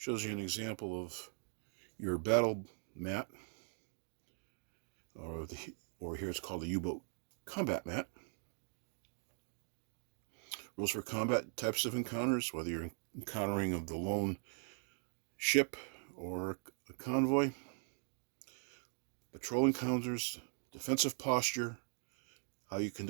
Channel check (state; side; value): silent; left; 51 dB below the other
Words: you an example of your battle mat, or here it's called the U-boat combat mat. Rules for combat types of encounters, whether you're encountering of the lone ship or a convoy. Patrol encounters, defensive posture, how you